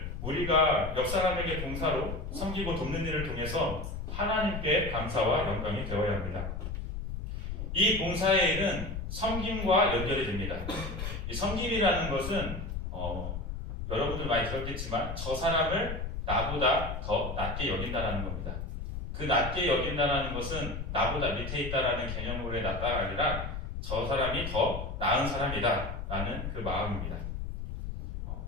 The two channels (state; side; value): noise; left; rumble, 5 dB below the sound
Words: 우리가 옆 사람에게 봉사로 섬기고 돕는 일을 통해서 하나님께 감사와 영광이 되어야 합니다. 이 봉사의 일은 섬김과 연결이 됩니다. 이 섬김이라는 것은 여러분들 많이 들었겠지만 저 사람을 나보다 더 낮게 여긴다는 겁니다. 그 낮게 여긴다는 것은 나보다 밑에 있다라는 개념으로의 낮다가 아니라 저 사람이 더 나은 사람이다 라는 그 마음입니다.